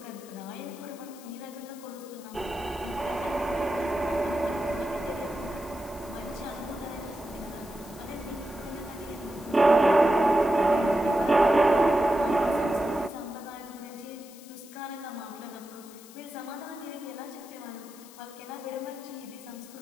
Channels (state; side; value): noise; left; hiss, 20 dB below the sound